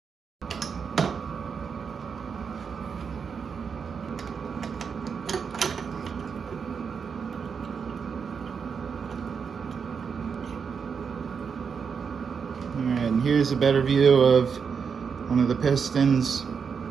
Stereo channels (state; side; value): quieter; left; 6.2 dB